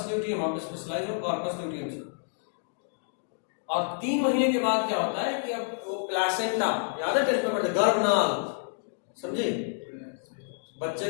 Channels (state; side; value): silent; right; digital silence